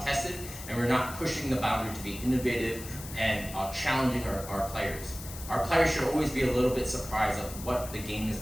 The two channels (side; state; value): left; noise; hiss, 12 dB below the sound